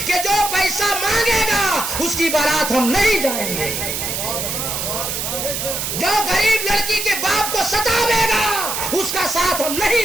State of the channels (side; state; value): right; noise; hiss, 3 dB below the sound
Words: کہ جو پیسہ مانگے گا اس کی بارات ہم نہیں جائیں گے؟ جو غریب لڑکی کے باپ کو ستاوے گا اس کا ساتھ ہم